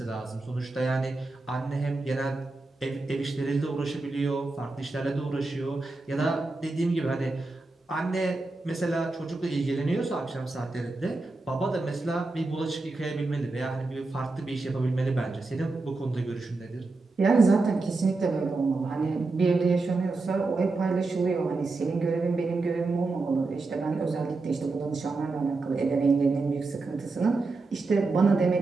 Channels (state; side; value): quieter; left; 3.5 dB